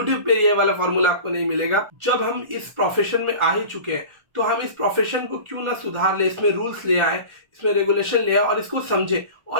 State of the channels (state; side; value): late; left; 1.4 ms